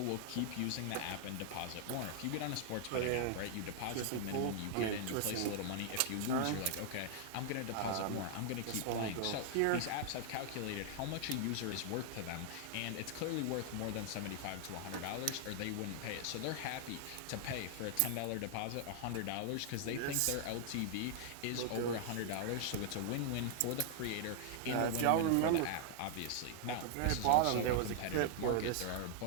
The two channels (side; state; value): both; different; correlation 0.00